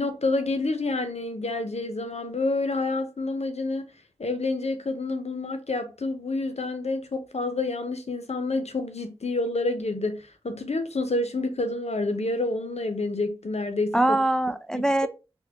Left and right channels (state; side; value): normal; both; correlation 0.70